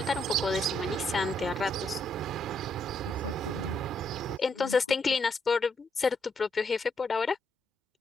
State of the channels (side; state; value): both; normal; correlation 0.76